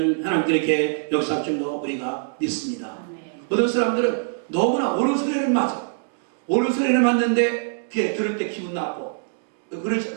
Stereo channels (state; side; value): silent; left; digital silence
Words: 하나님께 이렇게 역사할 줄로 우리가 믿습니다. 어떤 사람들은 너무나 옳은 소리를 맞아. 옳은 소리를 맞는데 그게 들을 때 기분 나쁘고